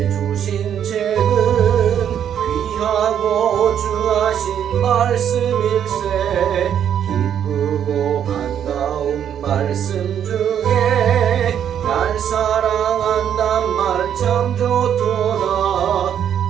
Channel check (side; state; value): left; quieter; 9.2 dB